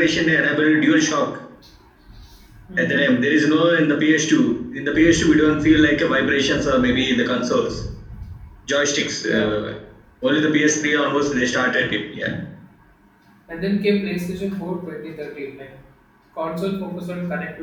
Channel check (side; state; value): both; identical; correlation 1.00